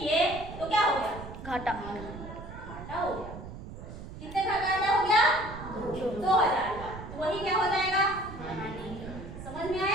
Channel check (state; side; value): noise; right; rumble, 12 dB below the sound